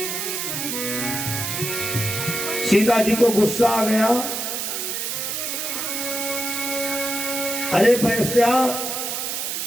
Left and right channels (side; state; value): right; noise; hiss, 2 dB below the sound